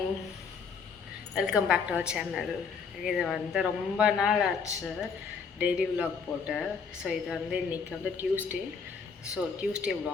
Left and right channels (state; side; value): quieter; right; 5.6 dB